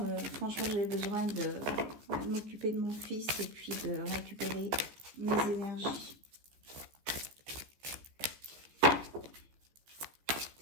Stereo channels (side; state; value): left; late; 14 ms